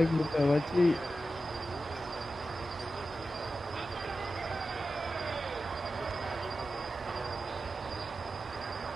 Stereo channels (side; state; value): both; normal; correlation 0.92